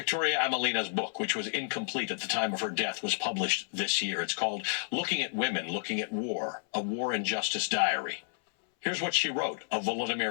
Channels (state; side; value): silent; right; 57 dB below the other